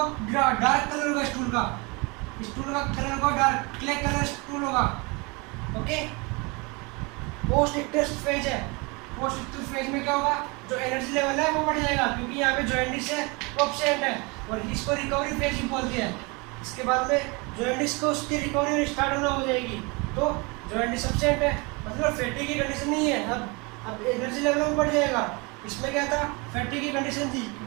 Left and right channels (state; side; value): quieter; left; 28.2 dB